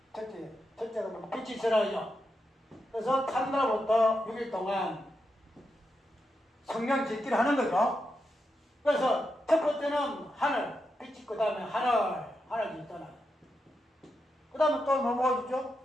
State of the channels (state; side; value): normal; both; correlation 0.86